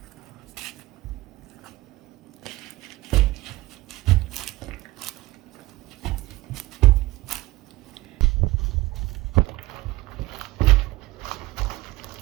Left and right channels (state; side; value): quieter; left; 19.0 dB